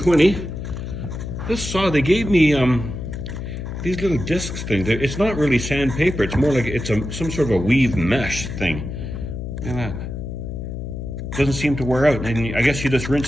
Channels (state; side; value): noise; left; hum, 6 dB below the sound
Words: This saw, they gave me these little discs things. It's not really sandpaper. It's more like it's some sort of a weave mesh thing. Look at that. Doesn't seem to wear out. And I guess you just